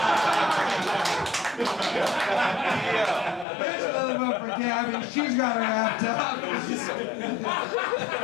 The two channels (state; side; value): drops out; right; at 3.5 s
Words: There's another vote for Gabby. She's got her wrapped up.